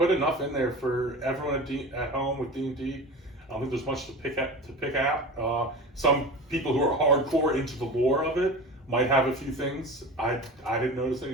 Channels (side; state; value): both; normal; correlation 0.32